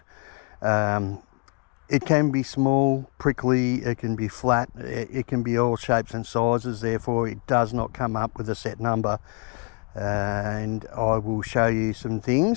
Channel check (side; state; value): right; quieter; 31.1 dB